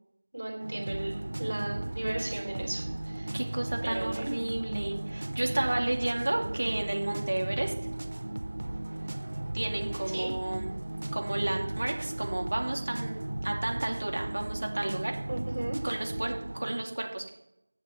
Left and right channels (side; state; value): both; inverted; correlation -1.00